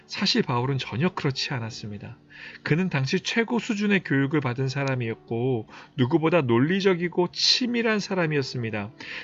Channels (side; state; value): both; identical; correlation 1.00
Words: 사실 바울은 전혀 그렇지 않았습니다. 그는 당시 최고 수준의 교육을 받은 사람이었고 누구보다 논리적이고 치밀한 사람이었습니다.